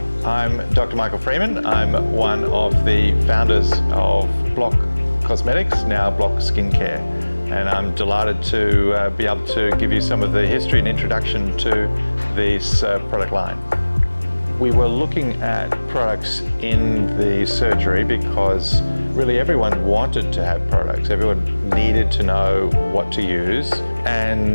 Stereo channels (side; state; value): both; inverted; correlation -1.00